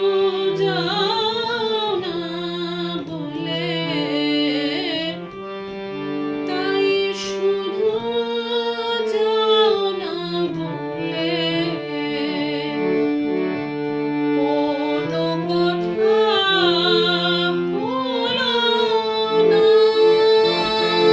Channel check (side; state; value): both; identical; correlation 1.00